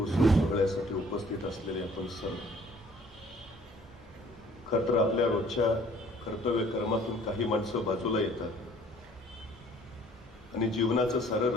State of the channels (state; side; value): normal; both; correlation 0.56